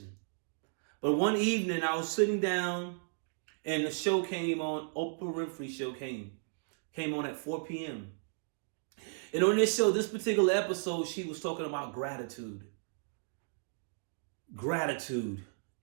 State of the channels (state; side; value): silent; left; digital silence